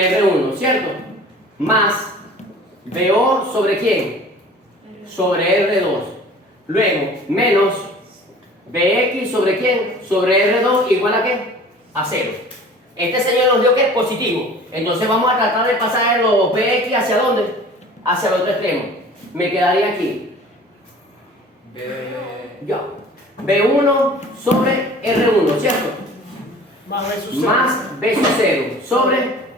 R1, ¿cierto? Más BO sobre quién? Sobre R2. Luego, menos BX sobre quién? Sobre R2 igual a qué? A 0. Este señor nos dio que es positivo. Entonces vamos a tratar de pasar los BX hacia dónde? Hacia el otro extremo. Me quedaría aquí. Ya. B1 sobre R1, ¿cierto? Más B sub 0 sobre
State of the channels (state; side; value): normal; both; correlation 0.45